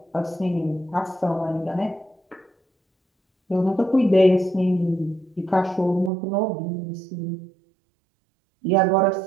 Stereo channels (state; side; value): drops out; left; at 6.1 s